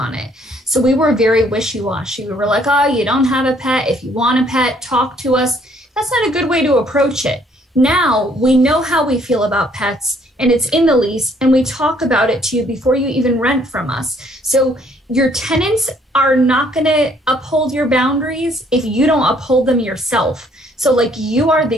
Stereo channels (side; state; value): both; normal; correlation 0.64